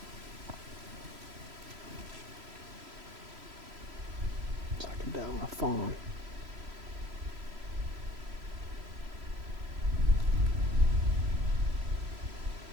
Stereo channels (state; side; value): late; left; 3.0 ms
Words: Down a fawn.